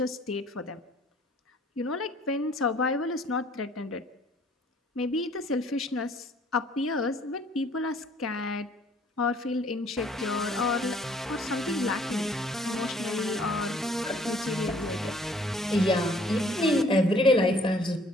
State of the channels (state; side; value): normal; both; correlation 0.59